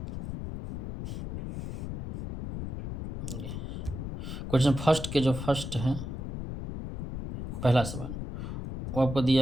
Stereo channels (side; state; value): left; noise; rumble, 6 dB below the sound